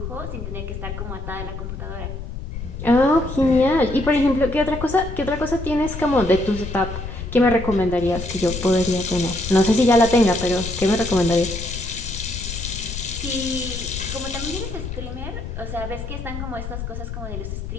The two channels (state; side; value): noise; left; rumble, 8 dB below the sound